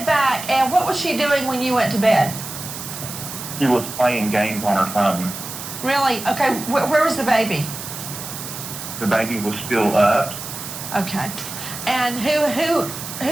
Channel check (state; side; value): noise; right; hiss, 9 dB below the sound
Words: back, and what was she doing when you went to bed? She was playing games on her phone. Really? Okay, where was the baby? The baby was still up. Okay. And who